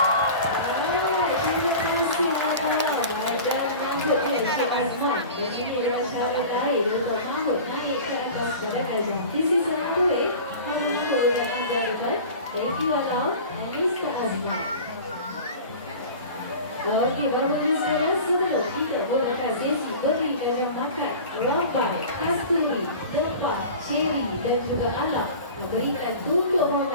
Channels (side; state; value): both; inverted; correlation -0.37